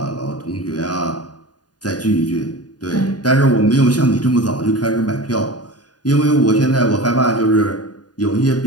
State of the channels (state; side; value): late; right; 0.69 ms